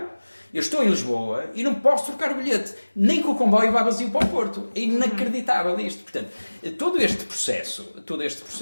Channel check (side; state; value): both; inverted; correlation -1.00